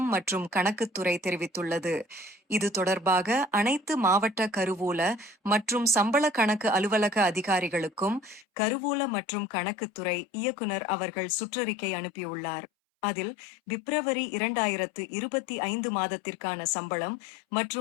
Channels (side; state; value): right; drops out; at 8.5 s